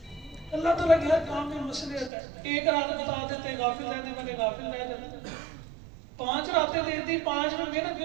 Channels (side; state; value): left; drops out; at 2.1 s